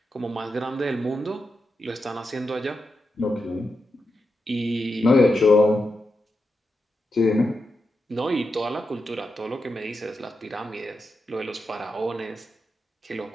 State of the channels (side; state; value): both; normal; correlation 0.87